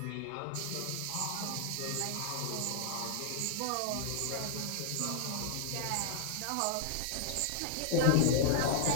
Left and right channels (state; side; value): different; both; correlation -0.01